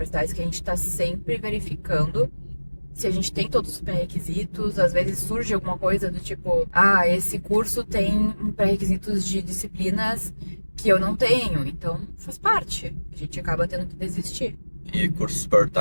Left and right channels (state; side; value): inverted; both; correlation -1.00